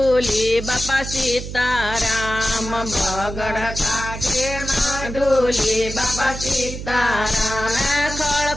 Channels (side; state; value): right; noise; hum, 8 dB below the sound